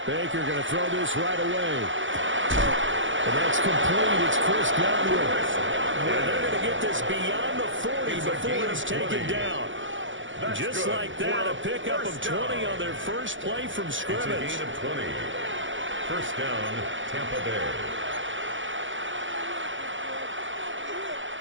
Baker going to throw this right away. And that's complete. It's Chris Godwin. And they're going to get this beyond the 40 before it's taken down. Just like that, a pickup of 20 on their first play from scrimmage. It's a gain of 20. First down, Tampa Bay.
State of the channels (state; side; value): late; left; 0.56 ms